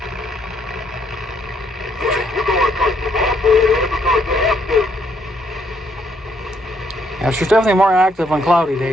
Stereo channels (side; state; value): both; normal; correlation 0.71